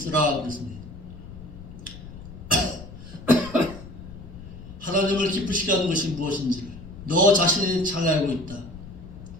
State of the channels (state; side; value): noise; left; rumble, 14 dB below the sound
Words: 그랬습니다. 하나님을 기쁘시게 하는 것이 무엇인지를 너 자신이 잘 알고 있다.